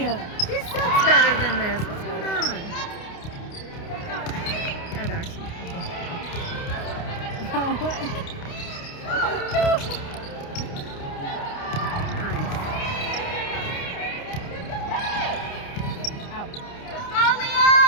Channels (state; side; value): late; right; 29 ms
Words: She sucks better than this. What's going on? Yeah, Darcy. Nice.